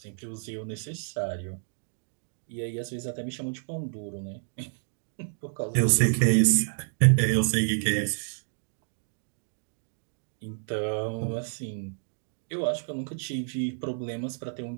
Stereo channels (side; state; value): left; silent; digital silence